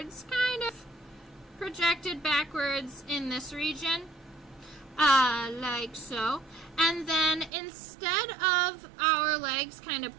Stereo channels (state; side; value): drops out; left; at 7.5 s